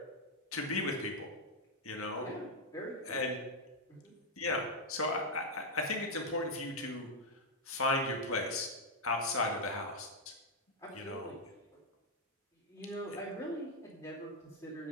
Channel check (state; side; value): normal; both; correlation -0.01